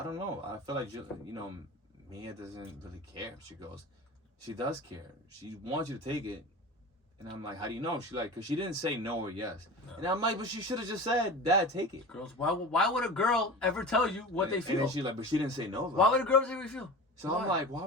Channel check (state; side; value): normal; both; correlation 0.33